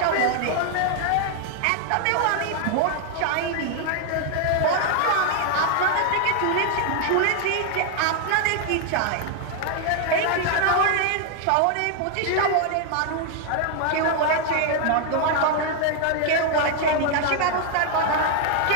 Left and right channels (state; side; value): different; both; correlation 0.00